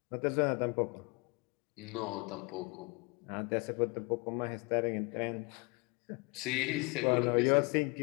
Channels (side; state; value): right; quieter; 29.0 dB